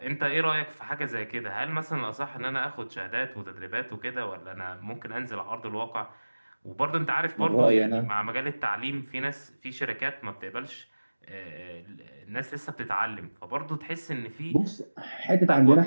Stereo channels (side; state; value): both; inverted; correlation -1.00